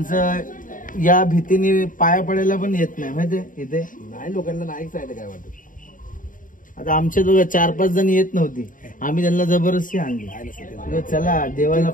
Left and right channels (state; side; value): late; right; 0.39 ms